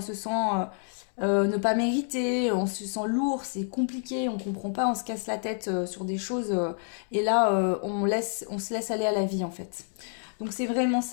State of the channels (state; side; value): silent; right; 59 dB below the other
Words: se sent ne pas mériter, on se sent lourd, c'est compliqué, on comprend pas, on se casse la tête sur des choses. Et là, on se laisse aller à la vie en fait. Donc c'est vraiment